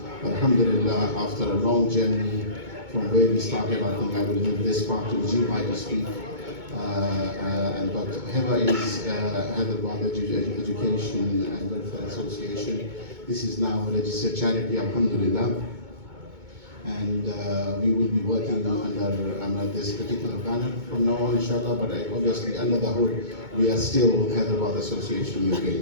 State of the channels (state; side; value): late; left; 2.2 ms